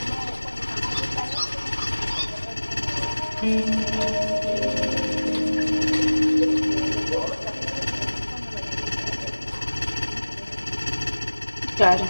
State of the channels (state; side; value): inverted; both; correlation -1.00